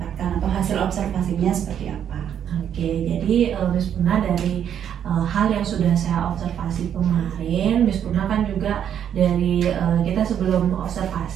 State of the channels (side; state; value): left; quieter; 9.2 dB